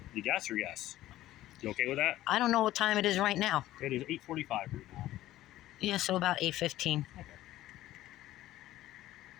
you guess or yes? You okay with that? I don't know what time it is right now. It is 8:45 right now. Yeah, so about 8:15. Okay.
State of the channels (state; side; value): quieter; right; 14.8 dB